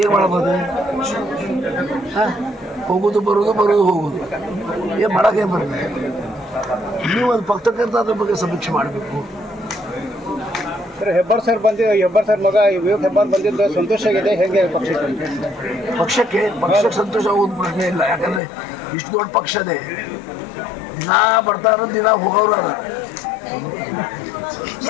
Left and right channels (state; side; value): drops out; right; at 18.4 s